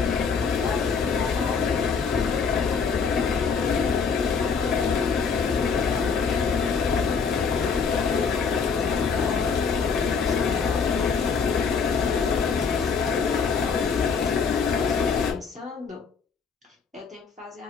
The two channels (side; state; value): right; quieter; 5.6 dB